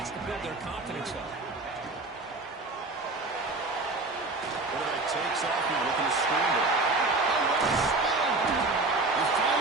to build their confidence up. Quarterback takes off here looking to scramble. They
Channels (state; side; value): quieter; left; 3.3 dB